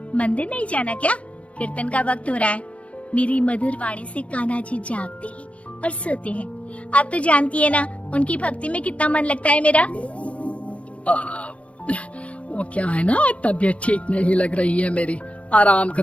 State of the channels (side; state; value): right; late; 0.064 ms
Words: मंदिर नहीं जाना क्या? कीर्तन का वक्त हो रहा है। मेरी मधुर वाणी से कान्हा जी जागते हैं और सोते हैं। आप तो जानती है ना उनकी भक्ति में कितना मन लगता है मेरा। वो क्या है ना, तबीयत ठीक नहीं लग रही है मेरी, आराम